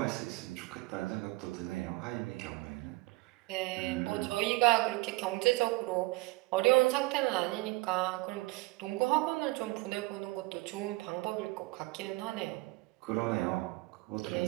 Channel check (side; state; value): left; quieter; 22.8 dB